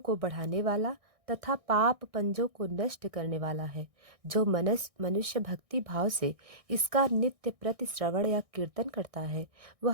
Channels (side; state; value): left; late; 1.6 ms